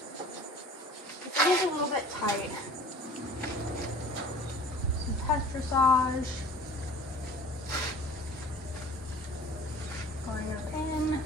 It is a little bit tight. Some test dressage. Going up in.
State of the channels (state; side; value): normal; both; correlation 0.46